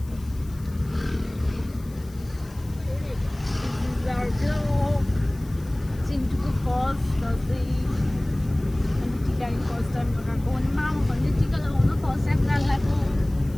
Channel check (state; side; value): noise; left; hiss, 24 dB below the sound